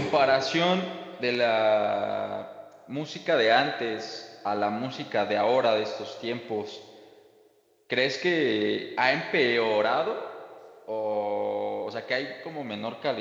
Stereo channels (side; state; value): both; identical; correlation 1.00